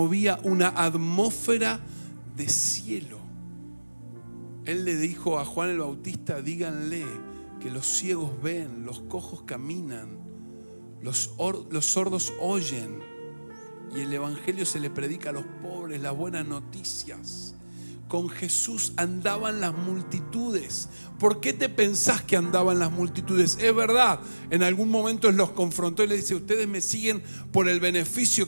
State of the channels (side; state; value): both; inverted; correlation -1.00